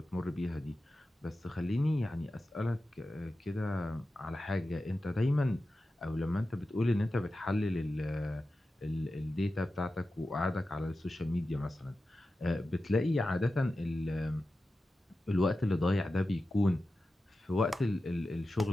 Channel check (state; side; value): normal; both; correlation 0.93